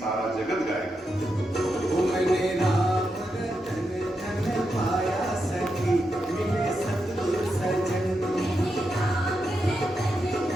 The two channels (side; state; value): both; normal; correlation 0.86